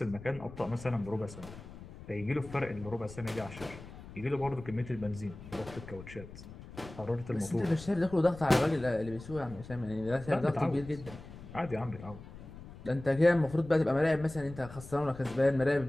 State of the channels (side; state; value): left; noise; rumble, 15 dB below the sound